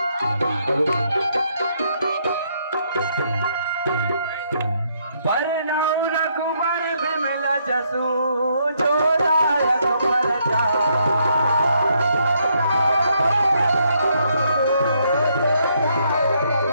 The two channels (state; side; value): inverted; both; correlation -0.73